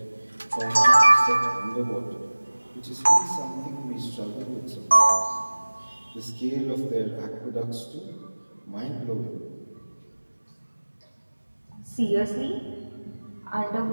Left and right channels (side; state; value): both; inverted; correlation -1.00